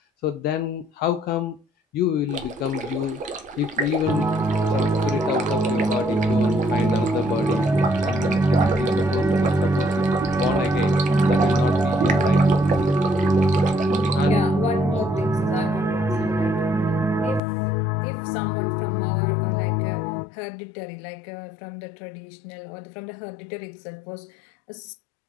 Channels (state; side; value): drops out; right; at 17.4 s